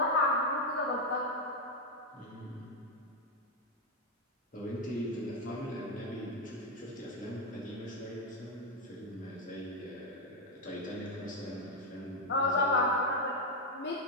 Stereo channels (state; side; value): normal; both; correlation 0.04